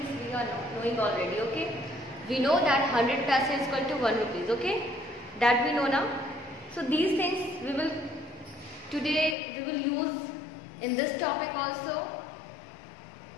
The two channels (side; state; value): right; drops out; at 9.3 s